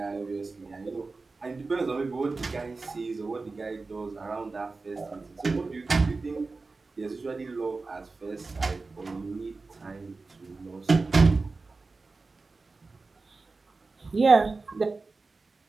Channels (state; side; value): quieter; left; 3.8 dB